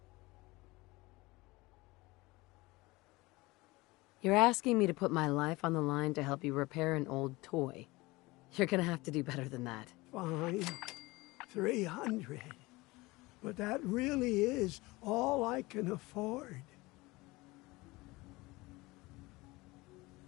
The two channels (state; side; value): quieter; right; 21.8 dB